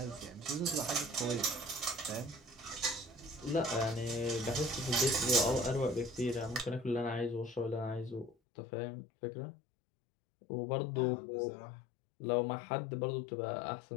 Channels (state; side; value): drops out; right; at 8.3 s